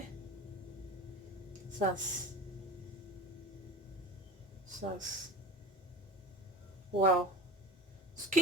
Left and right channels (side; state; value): both; normal; correlation 0.35